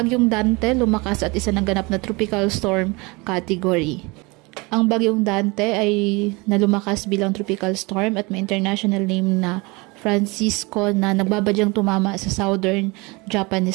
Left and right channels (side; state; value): left; quieter; 25.9 dB